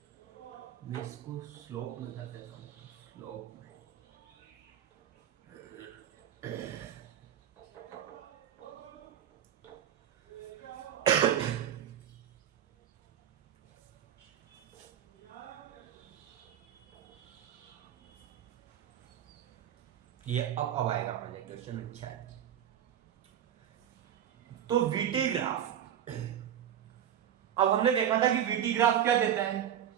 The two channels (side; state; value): left; quieter; 10.1 dB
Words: मैं इसको स्लोप में कर देता हूँ। स्लोप में ये अब आएगा पहले क्वेश्चन। अच्छा है, तो वीटी ग्राफ। अब हमने देखा था कि वीटी ग्राफ क्या देता है?